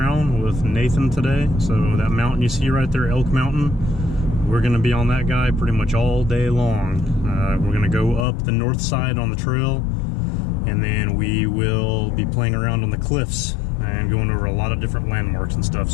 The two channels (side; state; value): right; drops out; at 8.2 s